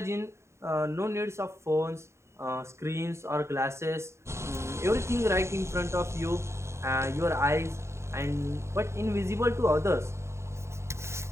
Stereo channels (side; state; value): left; late; 0.13 ms